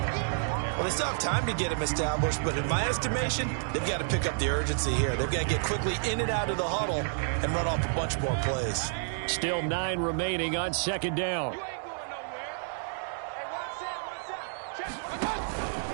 Well, they still have time to get him established, but in my estimation, they've got to pick up the urgency here. They've got to get quickly in and out of the huddle and run off a bunch more plays. Still 9 remaining on 2nd down.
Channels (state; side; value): silent; left; digital silence